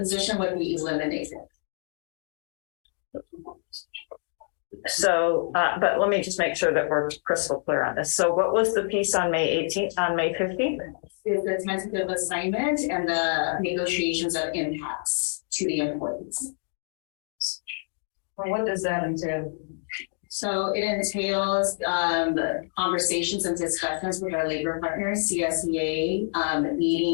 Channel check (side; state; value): right; silent; digital silence